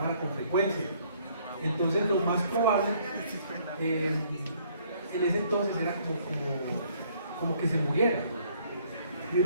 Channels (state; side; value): inverted; both; correlation -0.64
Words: con frecuencia. Entonces lo más probable en ese entonces era como que se muriera. Y